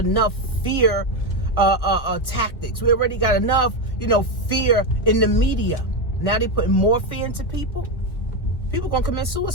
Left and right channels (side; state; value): right; late; 1.9 ms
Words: fear tactics. We already got enough, fear in the media. Now they putting more fear into people. People gonna commit